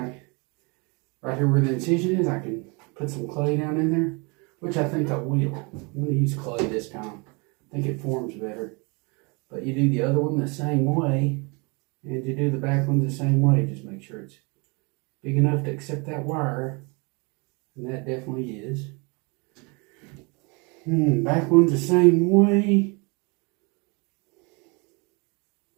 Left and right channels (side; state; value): left; quieter; 30.4 dB